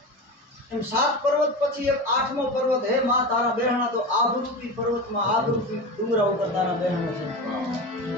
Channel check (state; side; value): normal; both; correlation 0.26